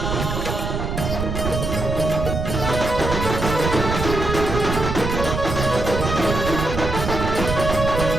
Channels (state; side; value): noise; right; rumble, 3 dB below the sound